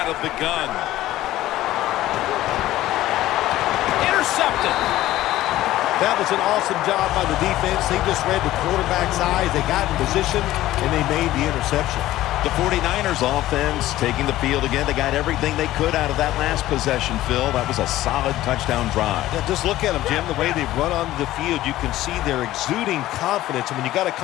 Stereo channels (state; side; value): quieter; right; 15.1 dB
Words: of the gun. Intercepted. That was an awesome job by the defense. They just read the quarterback's eyes. They got in position, and they made the interception. The 49ers offense taking the field again. They got everything they could out of that last possession, Phil. That was a solid touchdown drive. Yeah, just look at them, Jim. The way they run onto the field, you can see they're exuding confidence. And when you got a